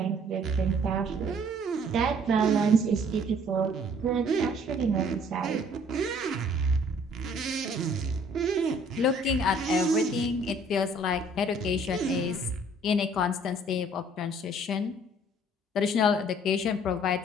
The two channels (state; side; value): normal; both; correlation 0.58